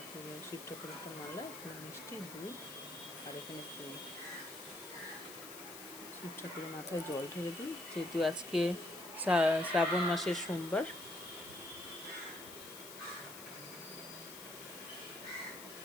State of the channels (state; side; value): noise; left; hiss, 12 dB below the sound